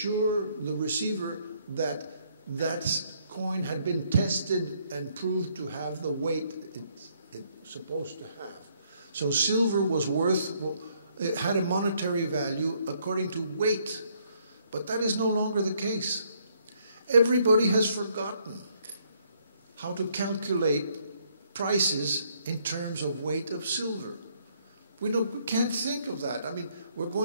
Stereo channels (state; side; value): inverted; both; correlation -0.69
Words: the receiver that that coin had been tested and proved to have the weight it's supposed to have. So silver was it had a monetary value according to weight, but that is no longer the case. Everybody has forgotten how to calculate prices in terms of weight of silver. We can't think of that. I mean, we're